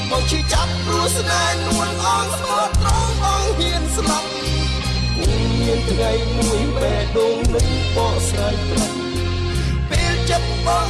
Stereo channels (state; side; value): identical; both; correlation 1.00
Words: បងឈឺចាប់ព្រោះស្នេហ៍នួនអងស្មោះត្រង់បងហ៊ានស្លាប់មានថ្ងៃមួយបេះដូងនឹងបកស្រាយប្រាប់ពេលចិត្តបង